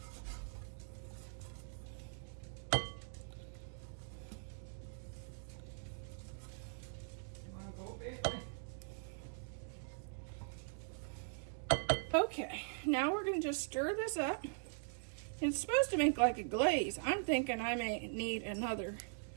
Okay, now we're going to just stir this up. It's supposed to make like a glaze. I'm thinking I may need another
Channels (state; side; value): silent; left; digital silence